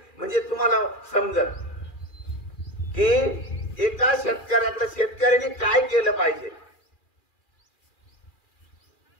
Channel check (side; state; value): right; late; 2.4 ms